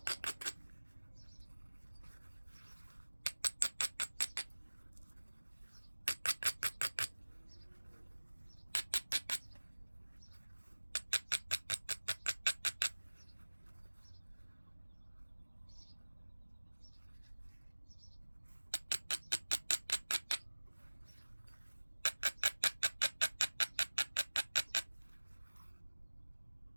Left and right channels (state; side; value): inverted; both; correlation -1.00